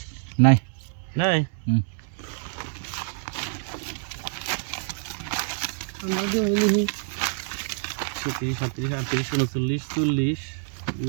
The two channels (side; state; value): left; silent; digital silence